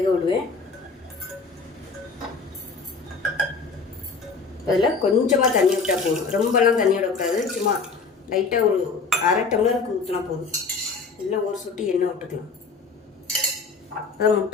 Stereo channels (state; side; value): quieter; right; 4.6 dB